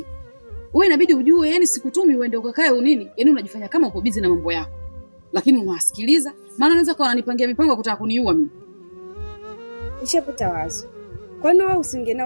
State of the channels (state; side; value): inverted; both; correlation -1.00